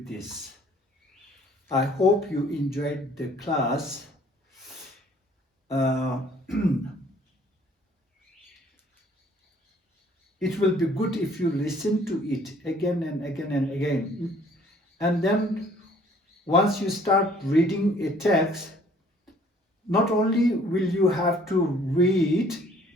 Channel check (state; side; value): normal; both; correlation 0.58